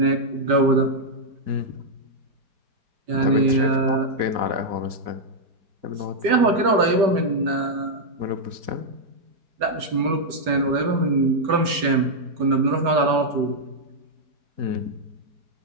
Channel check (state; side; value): late; left; 5.1 ms